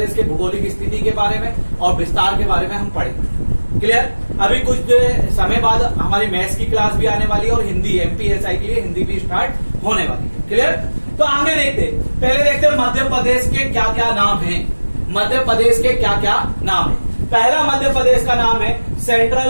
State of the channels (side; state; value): both; inverted; correlation -1.00